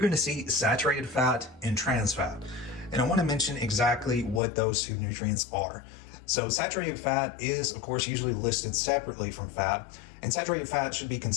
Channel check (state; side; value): drops out; right; at 4.4 s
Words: to see saturated fat and trans fat. And I want to mention exactly what those 2 nutrients are. So saturated fat is, of course, usually listed separately from fat, and saturated fat should be